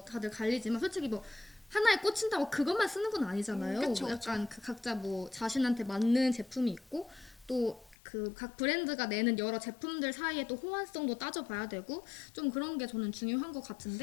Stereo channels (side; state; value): right; drops out; at 8.0 s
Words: 다들 갈리지만 솔직히 뭐 하나에 꽂힌다고 그것만 쓰는 건 아니잖아요. 그쵸, 뭐 약간 그 각자 뭐 자신한테 맞는 제품이 있고 또 그 각 브랜드가 내는 여러 제품들 사이에 또 호환성도 따져봐야 되고 좀 그런 게 저는 중요한 것